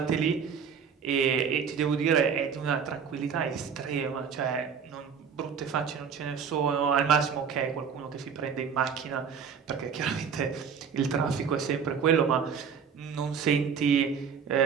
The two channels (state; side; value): quieter; left; 6.7 dB